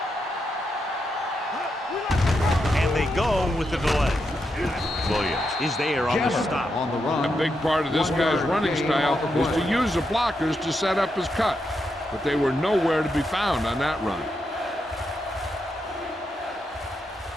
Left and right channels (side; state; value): both; normal; correlation 0.83